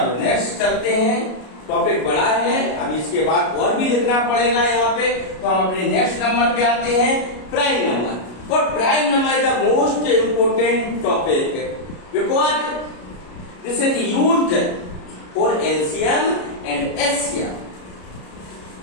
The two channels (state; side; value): late; right; 33 ms